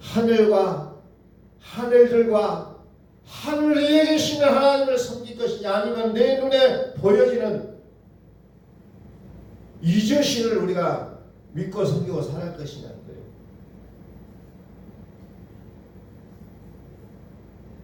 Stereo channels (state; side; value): identical; both; correlation 1.00